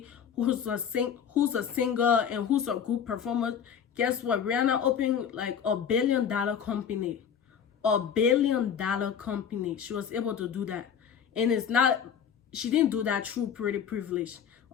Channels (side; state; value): right; quieter; 7.8 dB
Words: who's a singer and who's a good performer. Guess what? Rihanna opened like $1 billion company. $1 billion company. She was able to do that. And she didn't do that through pretty privilege.